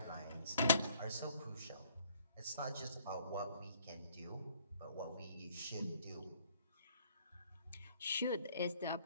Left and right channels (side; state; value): both; inverted; correlation -0.61